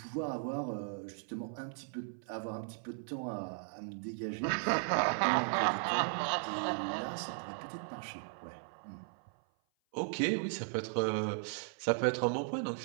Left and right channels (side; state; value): left; silent; 53 dB below the other